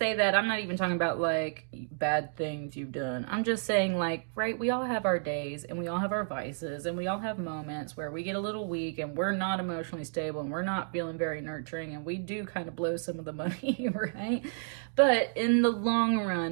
that, I'm not even talking about like bad things you've done. I'm just saying, like, right, we all have our days and we all have our vices and we all have moments where we get a little weak and we're not emotionally stable and we're not feeling very nurturing and we do kind of blow some of the money, right? But in the long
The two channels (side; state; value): left; silent; digital silence